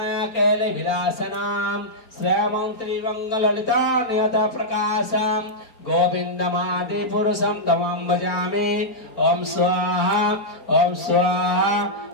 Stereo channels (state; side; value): late; right; 4.3 ms